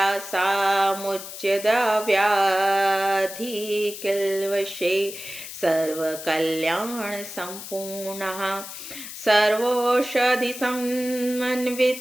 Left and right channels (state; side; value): noise; left; hiss, 11 dB below the sound